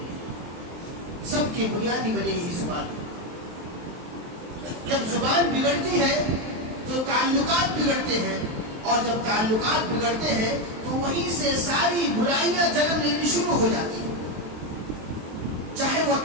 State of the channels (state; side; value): late; left; 23 ms